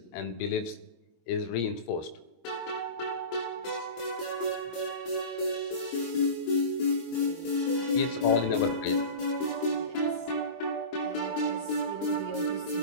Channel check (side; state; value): right; late; 23 ms